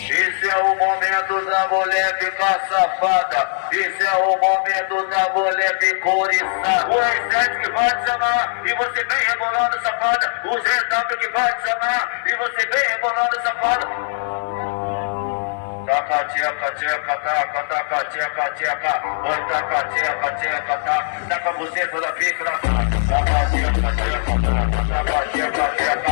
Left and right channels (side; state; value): right; silent; digital silence